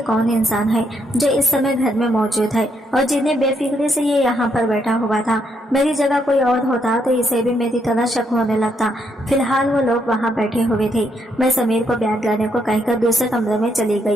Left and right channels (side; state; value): both; normal; correlation 0.75